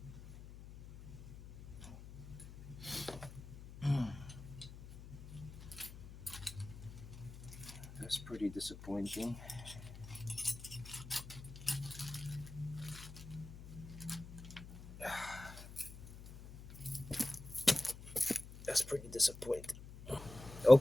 That's pretty disappointing. That's pretty disappointing.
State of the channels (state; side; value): noise; left; hum, 14 dB below the sound